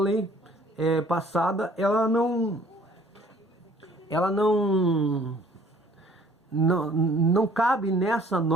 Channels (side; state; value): both; normal; correlation 0.56